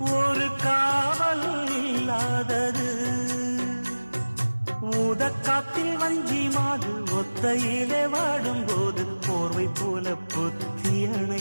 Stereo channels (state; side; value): inverted; both; correlation -1.00